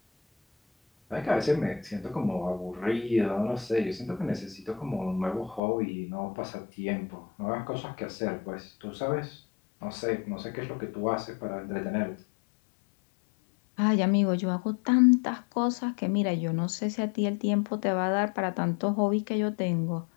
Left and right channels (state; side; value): drops out; right; at 5.6 s